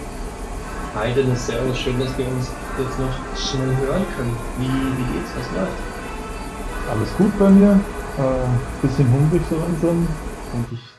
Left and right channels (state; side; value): identical; both; correlation 1.00